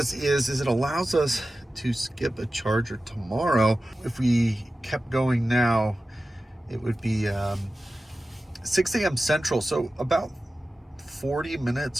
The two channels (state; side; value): normal; both; correlation 0.94